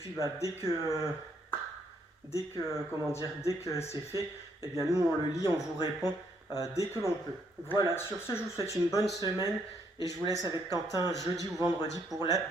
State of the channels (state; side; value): normal; both; correlation 0.72